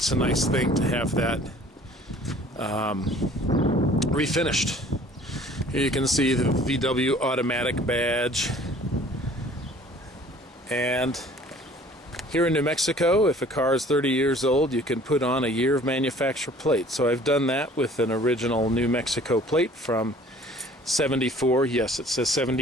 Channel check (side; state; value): both; normal; correlation 0.52